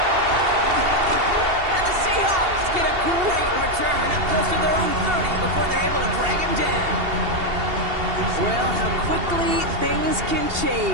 And the Seahawks get a great return up close to their own 30 before they're able to drag him down. Well, how quickly things can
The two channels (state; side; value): late; left; 2.8 ms